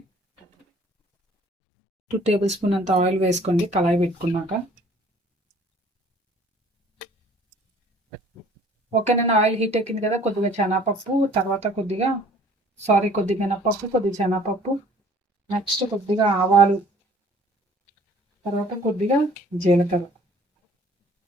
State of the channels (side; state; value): both; normal; correlation 0.53